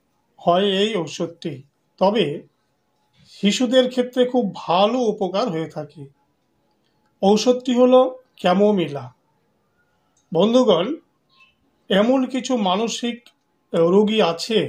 হয় এই ঔষধটি, তবে শিশুদের ক্ষেত্রে খুব ভালো উপকার হয়ে থাকে। ঔষধটি হলো ক্যামোমিলা। বন্ধুগণ, এমন কিছু মানসিক রোগী আছে,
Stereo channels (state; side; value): identical; both; correlation 1.00